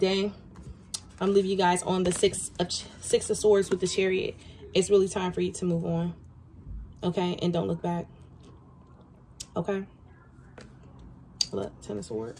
I'm leaving you guys on the six of Swords with the Chariot. It's really time for you to move on. Okay? And don't look back. Okay? Look, 10 of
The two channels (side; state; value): both; identical; correlation 1.00